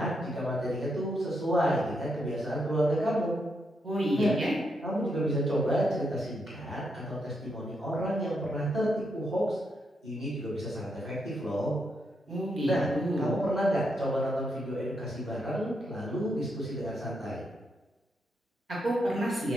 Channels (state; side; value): normal; both; correlation 0.80